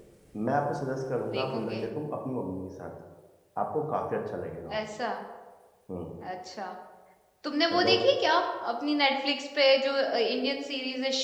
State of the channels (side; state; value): both; identical; correlation 1.00